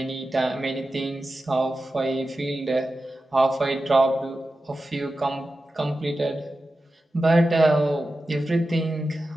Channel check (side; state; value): both; normal; correlation 0.93